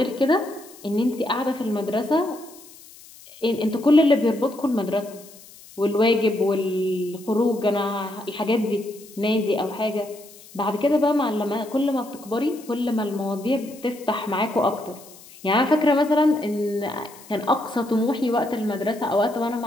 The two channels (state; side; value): noise; left; hiss, 21 dB below the sound